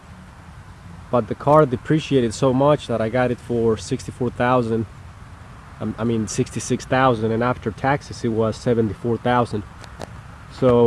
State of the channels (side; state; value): both; identical; correlation 1.00